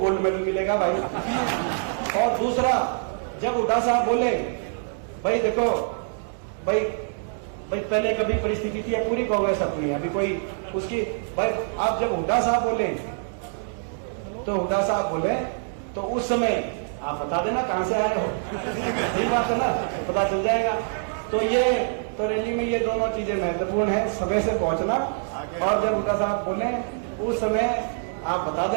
मेडल मिलेगा भाई। और दूसरा, जब हुड्डा साहब बोले भाई देखो भाई पहले कभी परिस्थिति थी, पूरी कांग्रेस अपनी है, अभी कोई उसकी भाई। आप जब हुड्डा साहब बोले तो उस समय आप बता देना कहां से आए हो, सही बात है ना, पता चल जाएगा। तो रैली में ये दोनों चीजें महत्वपूर्ण है, समय से पहुंचना, और जब हुड्डा साहब बोले उस समय आप बता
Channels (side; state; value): left; silent; digital silence